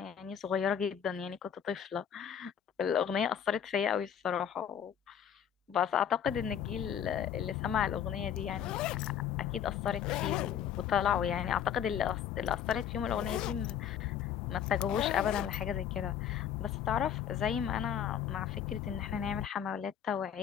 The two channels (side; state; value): right; quieter; 9.0 dB